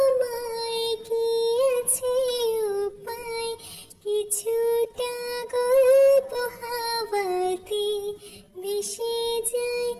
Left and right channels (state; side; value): identical; both; correlation 1.00